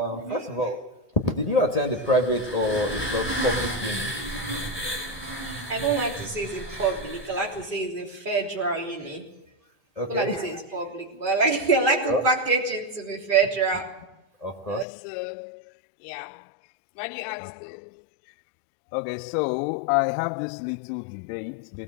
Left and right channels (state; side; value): drops out; right; at 14.9 s